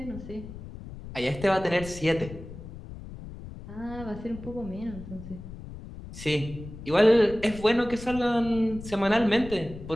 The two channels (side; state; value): left; noise; rumble, 13 dB below the sound